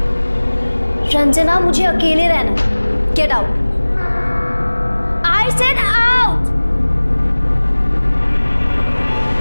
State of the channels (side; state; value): both; inverted; correlation -1.00